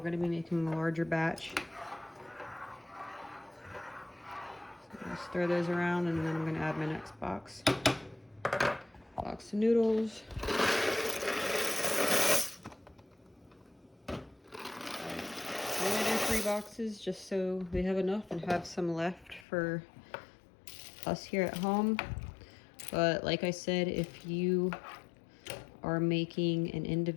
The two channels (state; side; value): drops out; right; at 19.5 s